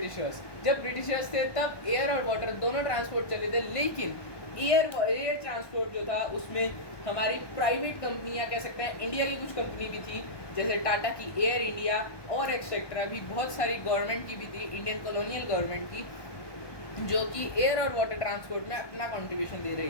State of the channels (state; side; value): late; right; 1.2 ms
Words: जब ब्रिटिशर्स थे तब एयर और वाटर दोनों ट्रांसपोर्ट चले थे, लेकिन एयर ट्रांसपोर्ट जो था उसमें हमारी प्राइवेट कंपनियां कह सकते हैं, इंडिया की कुछ कंपनी भी थी, जैसे टाटा की एयर इंडिया और एक्सेट्रा भी, बहुत सारी गवर्नमेंट की भी थी, इंडियन कॉलोनियल गवर्नमेंट की, जो कि एयर और वाटर ट्रांसपोर्ट में अपना कंट्रीब्यूशन दे रही